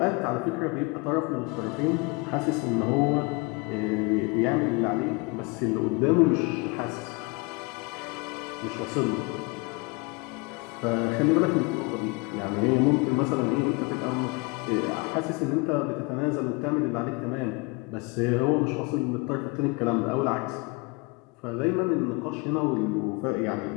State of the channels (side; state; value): right; quieter; 27.6 dB